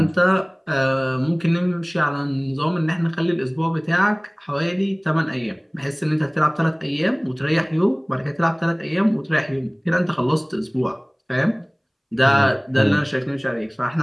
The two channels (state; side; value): identical; both; correlation 1.00